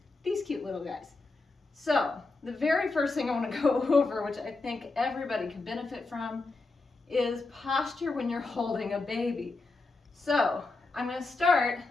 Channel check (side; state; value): right; quieter; 3.5 dB